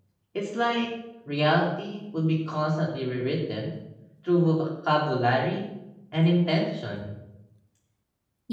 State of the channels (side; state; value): both; identical; correlation 1.00